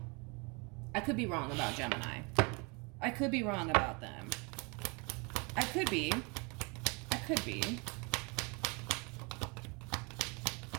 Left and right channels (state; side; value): quieter; left; 30.4 dB